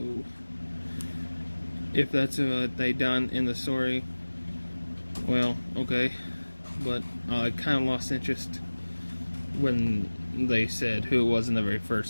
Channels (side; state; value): both; inverted; correlation -1.00